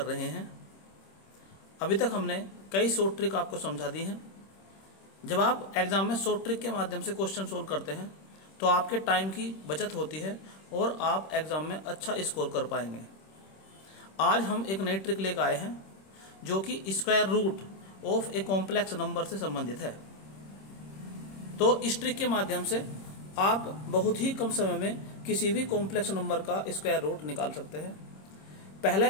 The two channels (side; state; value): right; late; 26 ms